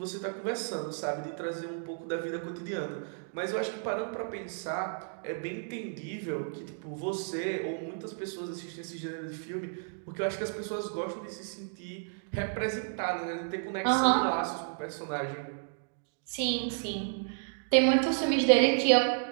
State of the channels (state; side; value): silent; left; digital silence